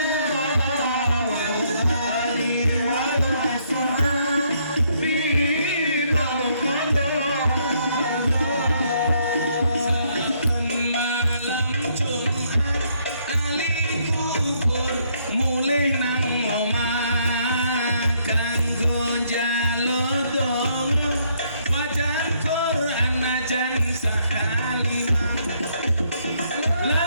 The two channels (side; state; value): both; inverted; correlation -0.70